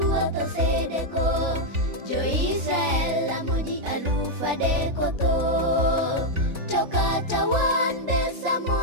osedeko Jo-Israel lamo ji 3,000 tho. To kata wan be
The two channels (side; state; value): left; late; 3.4 ms